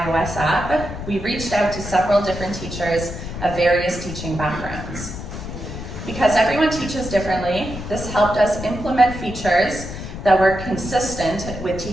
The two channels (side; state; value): left; noise; rumble, 9 dB below the sound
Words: app, we reached out to several different teachers of various teaching backgrounds. Because everyone teaches differently, this helped us implement features that were consistent with